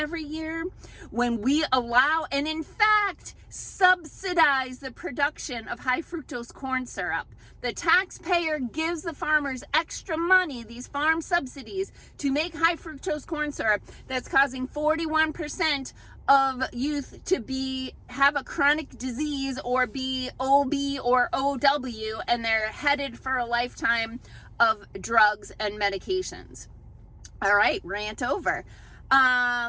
year, when we allow and in fact subsidize the production of high fructose corn syrup. The taxpayer gives the farmers extra money, these farm subsidies, to make high fructose corn syrup that's causing 41% of youth to have a chronic disease or be OB or OW, and they're headed for a lifetime of drugs and medications. All right, rant over.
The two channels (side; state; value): both; identical; correlation 1.00